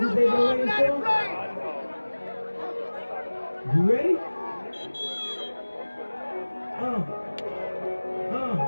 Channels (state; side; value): inverted; both; correlation -1.00